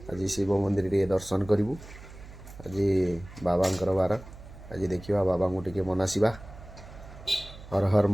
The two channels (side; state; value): right; noise; hum, 17 dB below the sound